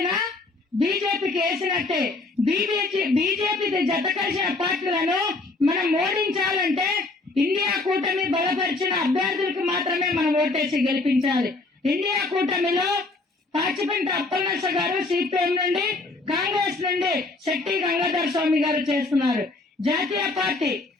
బీజేపీకి వేసినట్టే. బీజేపీ జత కలిసిన పార్టీలను మనం ఓడించాలంటే ఇండియా కూటమి బలపరిచిన అభ్యర్థులకు మాత్రమే మనం ఓటేసి గెలిపించాలి. ఇండియా కూటమిలో పాచిపెంట అప్పలనర్స గారు సిపిఎం నుండి, కాంగ్రెస్ నుండి శెట్టి గంగాధర స్వామి గారు చేస్తున్నారు. జాతీయ పార్టీ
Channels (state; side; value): quieter; right; 3.3 dB